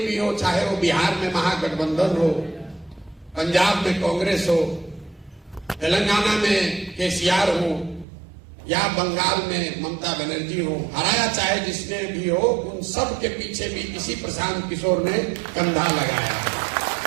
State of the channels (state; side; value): drops out; left; at 8.1 s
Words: हो, चाहे वो बिहार में महागठबंधन हो, पंजाब में कांग्रेस हो, तेलंगाना में केसीआर हो या बंगाल में ममता बनर्जी हो, हराया चाहे जिसने भी हो, उन सब के पीछे भी इसी प्रशांत किशोर ने कंधा लगाया।